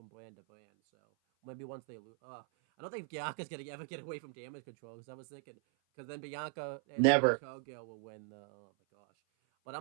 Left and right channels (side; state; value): left; silent; 52 dB below the other